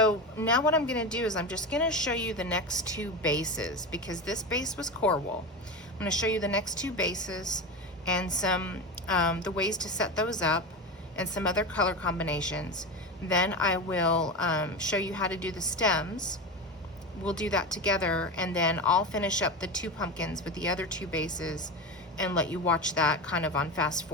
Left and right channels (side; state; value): both; normal; correlation 0.22